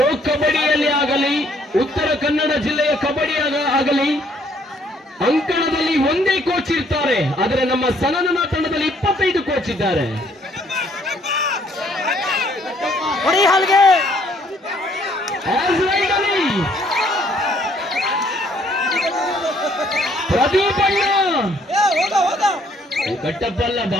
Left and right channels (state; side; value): normal; both; correlation 0.65